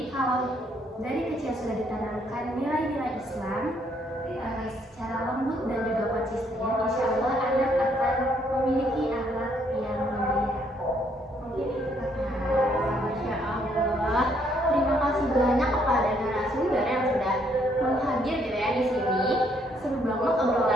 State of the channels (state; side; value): normal; both; correlation 0.69